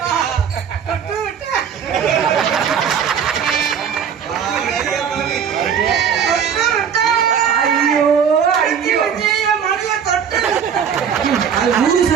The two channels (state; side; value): quieter; left; 7.6 dB